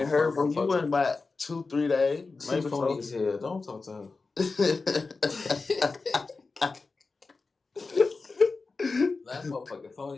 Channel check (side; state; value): right; quieter; 4.0 dB